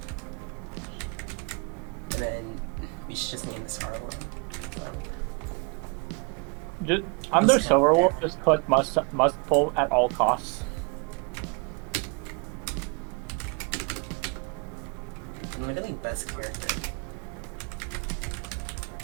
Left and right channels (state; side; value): quieter; left; 33.1 dB